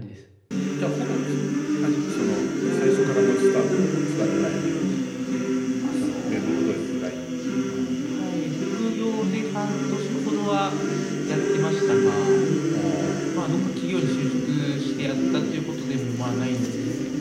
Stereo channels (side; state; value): both; identical; correlation 1.00